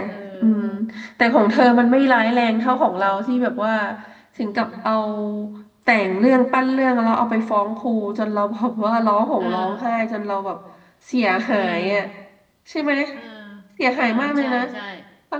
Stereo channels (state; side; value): identical; both; correlation 1.00